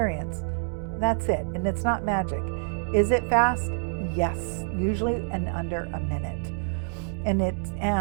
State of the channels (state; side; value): silent; left; 60 dB below the other